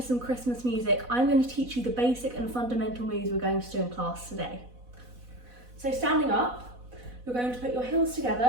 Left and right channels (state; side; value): late; left; 4.1 ms